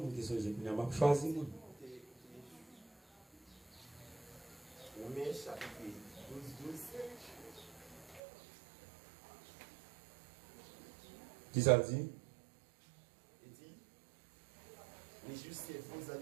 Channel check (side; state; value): left; drops out; at 8.2 s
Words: avez choisi. Romains chapitre 12. Qui ça dit? Il dit, les justes et faux dans